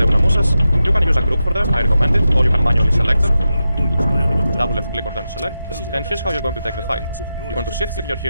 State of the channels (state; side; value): inverted; both; correlation -0.90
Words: unamusas. You can use a group for them, I recommend it, or you can manually select them. Double left click on them to select, and here's how you're going to take the fight. You're going to shift click your